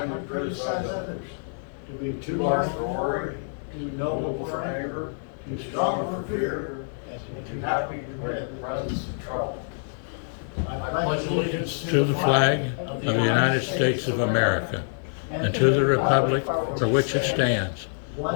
to criticize others. To be too large for worry, too noble for anger, too strong for fear, and too happy to dread the presence of trouble. I pledge allegiance To the flag of the United States of America, and to the republic for which it stands,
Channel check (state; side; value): silent; right; digital silence